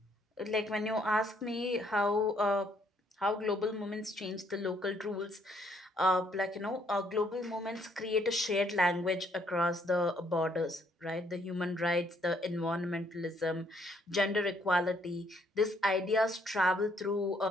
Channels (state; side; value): normal; both; correlation 0.68